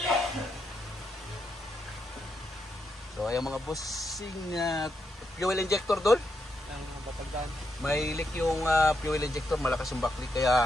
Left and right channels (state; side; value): normal; both; correlation 0.82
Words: So ayan mga bossing, fuel injector doon. May leak yung fuel injector, malakas yung backlick,